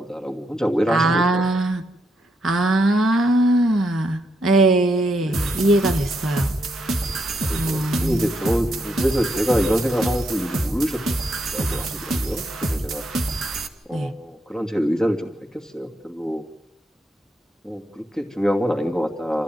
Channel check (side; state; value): both; normal; correlation 0.79